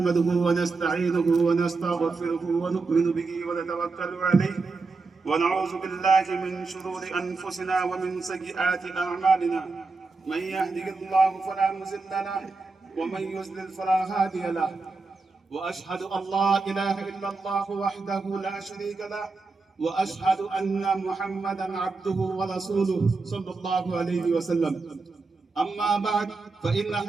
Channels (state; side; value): quieter; left; 4.0 dB